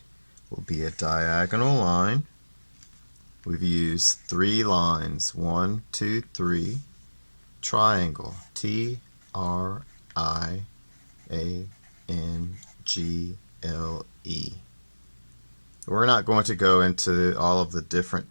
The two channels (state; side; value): inverted; both; correlation -1.00